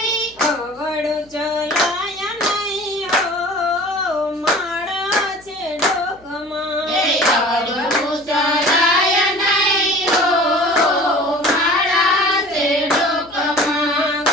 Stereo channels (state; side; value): noise; left; hum, 29 dB below the sound